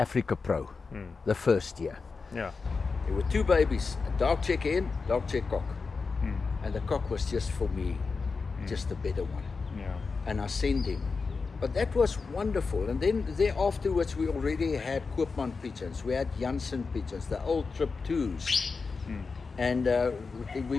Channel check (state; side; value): quieter; right; 4.6 dB